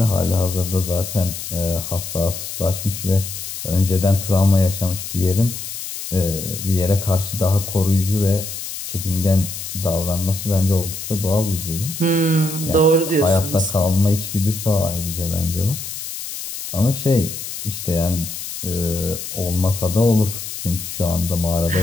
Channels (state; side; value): noise; left; hiss, 8 dB below the sound